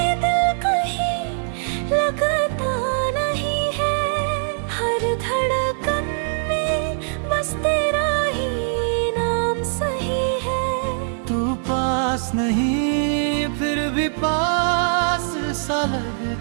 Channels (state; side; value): silent; left; digital silence